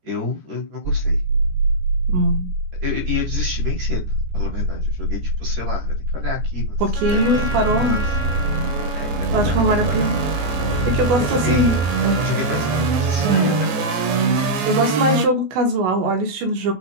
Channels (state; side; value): late; left; 14 ms